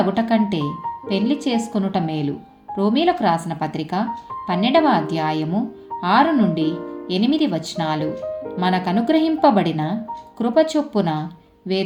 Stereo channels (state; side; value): identical; both; correlation 1.00